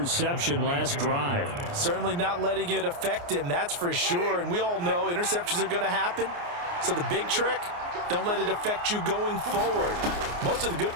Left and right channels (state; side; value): late; left; 29 ms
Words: last drive. Certainly not letting it affect him, that's for sure. And we all know interceptions are going to happen. So the big trick, don't let it affect you going forward. Most of the good